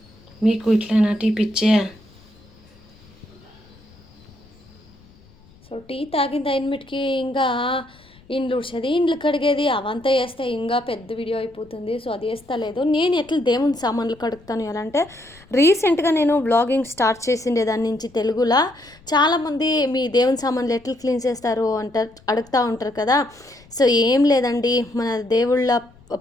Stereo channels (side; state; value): left; noise; rumble, 27 dB below the sound